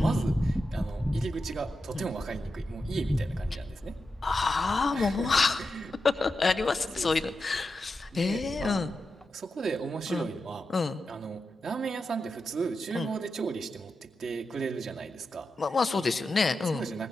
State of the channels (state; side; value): normal; both; correlation 0.89